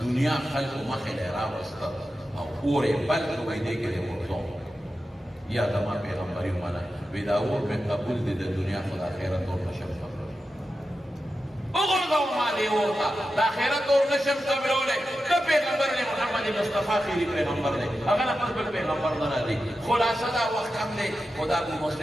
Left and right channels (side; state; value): both; normal; correlation 0.91